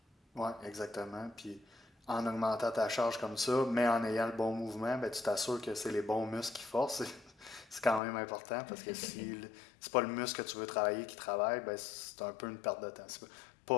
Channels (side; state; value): right; drops out; at 8.0 s